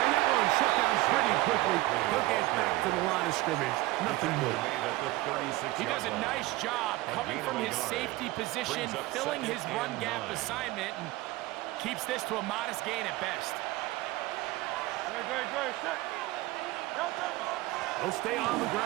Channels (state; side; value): quieter; left; 18.9 dB